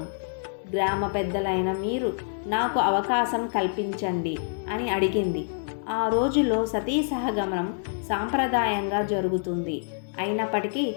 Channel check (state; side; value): silent; right; digital silence